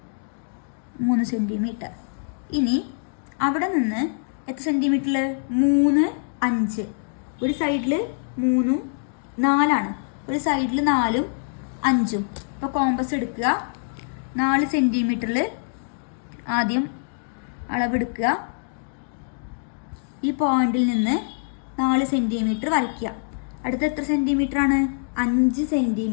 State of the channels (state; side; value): silent; right; digital silence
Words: 3 സെന്റിമീറ്റർ. ഇനി അവിടെ നിന്ന് എത്ര സെന്റിമീറ്ററിൽ, 3, 5. ഒരു സൈഡിൽ 3, 4 ഒരു സൈഡിൽ 4, 5. അപ്പോൾ കോമ്പസ് എടുക്കുക. 4 സെന്റിമീറ്ററിൽ ആദ്യം അളവെടുക്കുക. ഈ പോയിന്റിൽ നിന്ന് 4 സെന്റിമീറ്റർ വരയ്ക്കുക. അടുത്ത എത്ര സെന്റിമീറ്റർ ആണ്, 5